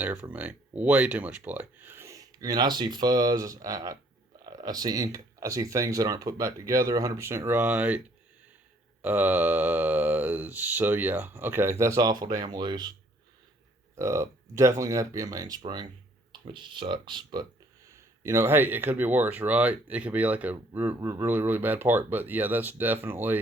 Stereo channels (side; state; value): both; normal; correlation 0.62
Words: for me. Way too much play. I mean, I see fuzz. I see ink. I see things that aren't put back together 100% right. So yeah, okay, that's awful damn loose. Definitely gonna have to be a mainspring, which sucks, but you know, hey, it could be worse, right? It could be like a really, really bad part. But yeah, that's